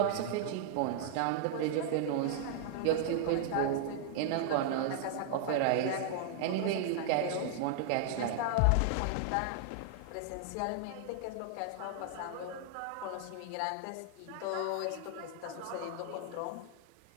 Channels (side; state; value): both; different; correlation 0.00